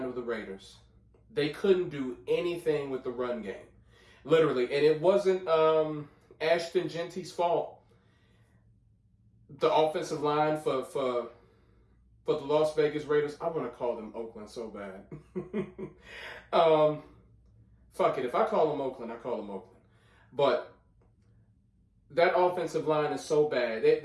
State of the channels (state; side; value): identical; both; correlation 1.00